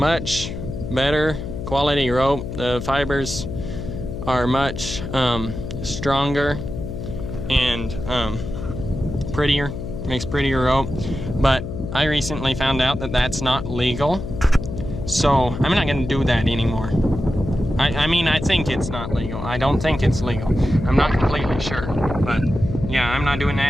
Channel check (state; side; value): noise; left; hum, 7 dB below the sound